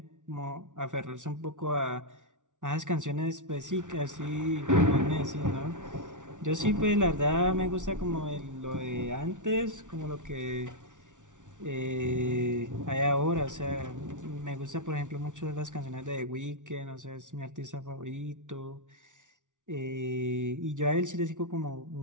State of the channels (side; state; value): left; late; 0.87 ms